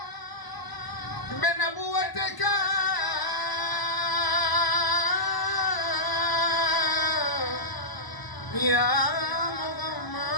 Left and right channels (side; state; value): right; late; 1.0 ms